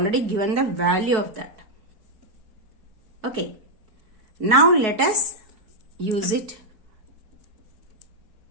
given the value of that. Okay. Now let us use it.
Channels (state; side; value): late; left; 4.7 ms